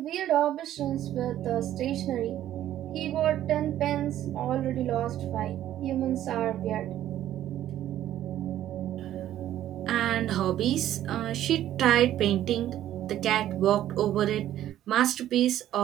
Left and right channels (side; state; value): left; quieter; 12.3 dB